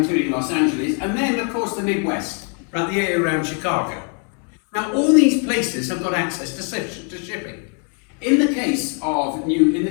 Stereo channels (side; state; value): right; quieter; 39.5 dB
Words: Los Angeles, and then of course the Midwest, right, the area around Chicago. Now all these places have got access to shipping. In the case of